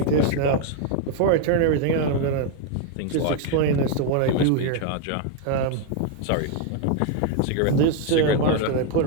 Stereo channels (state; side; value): different; both; correlation 0.00